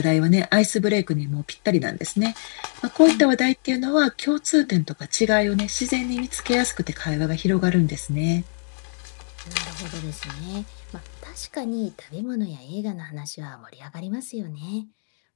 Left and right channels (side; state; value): right; silent; digital silence